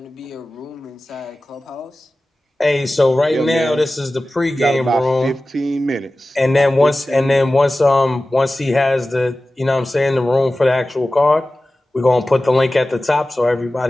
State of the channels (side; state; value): both; normal; correlation 0.96